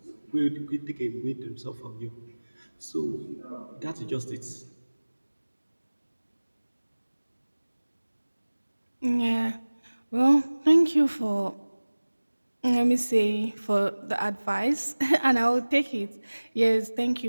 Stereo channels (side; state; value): both; inverted; correlation -1.00